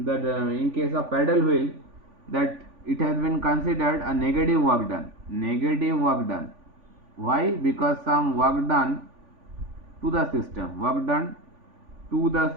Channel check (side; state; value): left; late; 3.5 ms